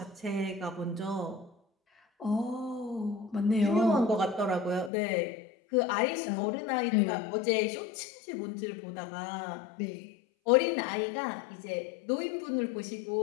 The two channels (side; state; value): right; drops out; at 4.9 s